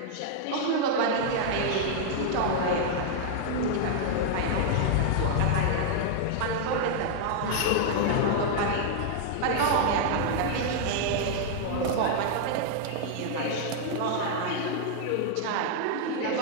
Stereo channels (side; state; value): both; different; correlation -0.01